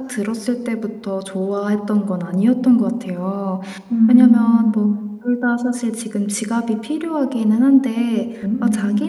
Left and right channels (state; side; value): identical; both; correlation 1.00